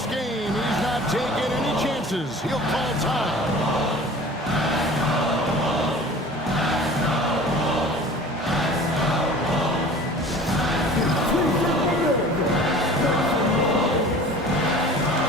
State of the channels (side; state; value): both; normal; correlation 0.43